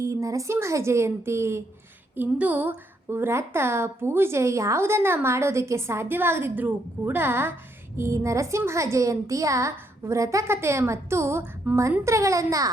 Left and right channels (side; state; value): both; normal; correlation 0.75